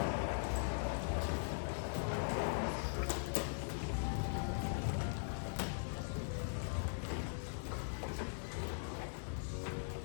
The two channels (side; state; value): right; silent; 50 dB below the other